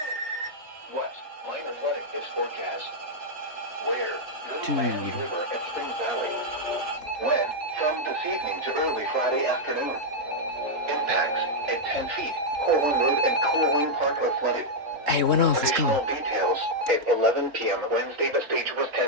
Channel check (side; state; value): left; late; 3.8 ms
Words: What minor flooding is forecast? Where? Miami Dude. River and Spring Valley. When? From this evening to early Friday afternoon. Impacts at 10 feet. Corwin Road and Corwin Park are flooded. Hey, it went off. Let's Additional go. details. At 11 p.m. Wednesday, the stage was